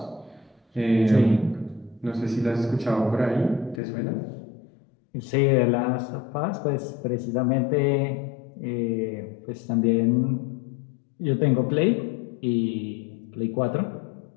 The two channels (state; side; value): drops out; right; at 3.8 s